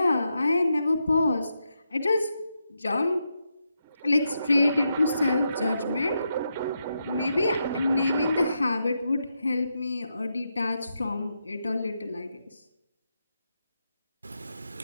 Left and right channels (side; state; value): both; inverted; correlation -0.84